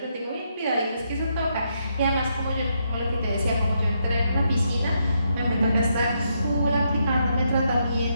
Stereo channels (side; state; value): both; inverted; correlation -0.78